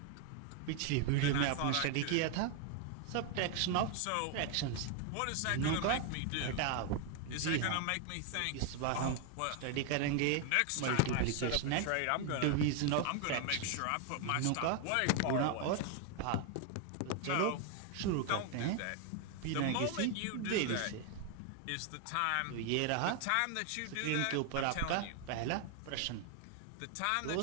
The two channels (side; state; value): both; different; correlation 0.01